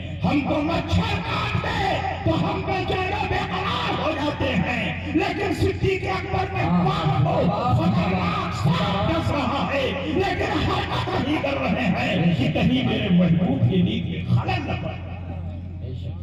ہم کو مچھر کاٹ دے تو ہم بے چین و بے قرار ہو جاتے ہیں، لیکن صدیق اکبر میں پاپ کو خطرناک سانپ ڈس رہا ہے لیکن حرکت نہیں کر رہے ہیں کہ کہیں میرے محبوب کی نیند میں خلل نہ پڑے۔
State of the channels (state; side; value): identical; both; correlation 1.00